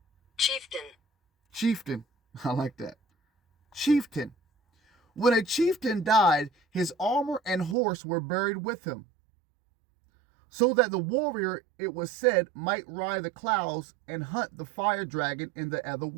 Chieftain. I like that. Chieftain. When a chieftain died, his armor and horse were buried with him, so that the warrior, it was said, might ride the clouds and hunt the fire dragon in the other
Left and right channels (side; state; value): left; drops out; at 7.8 s